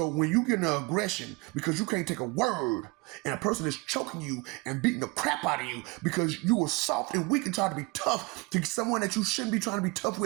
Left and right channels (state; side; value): quieter; left; 26.1 dB